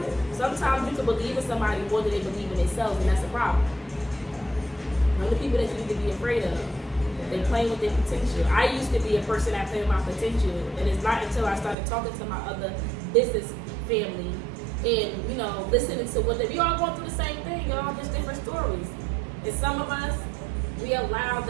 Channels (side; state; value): left; drops out; at 11.8 s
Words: it? Sometimes you can believe in somebody more than they believe in themselves, and that's a problem. One of the people that you need to be afraid of, they playing with their potential. I used to be a person that played with my potential, and it's not until I started talking to my other business family and, listening to what we all going through the same thing, y'all, just different stories. And some of us, we allow